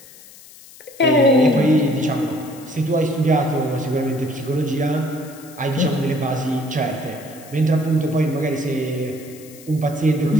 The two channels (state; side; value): noise; left; hiss, 21 dB below the sound